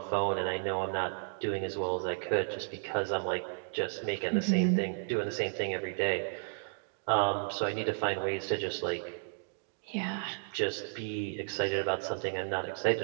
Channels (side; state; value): left; silent; digital silence